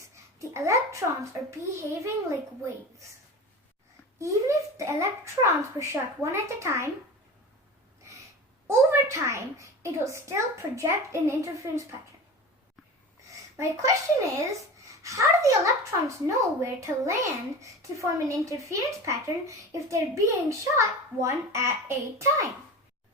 the electrons are behaving like waves. Even if the electrons were shot one at a time, over time, it will still project an interference pattern. My question is, how do the electrons know where to land to form an interference pattern if they're being shot one at a time?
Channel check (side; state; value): both; normal; correlation 0.32